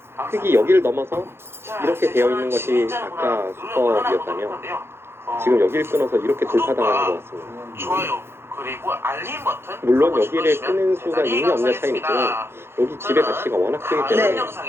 흑이 여기를 넘어서 이렇게 되어 있는 것이 아까 수법이었다면 지금 여기를 끊어서 이렇게 돌파당하는 것 같습니다. 좋아요. 그리고 알림 버튼 물론 여기를 끄는 수가 있냐 없냐 차이는 있지만 여기 집의 가치가 워낙 크기 다른 때문에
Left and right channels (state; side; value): late; left; 0.12 ms